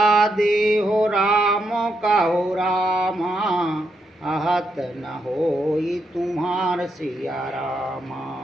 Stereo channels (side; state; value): both; normal; correlation 0.80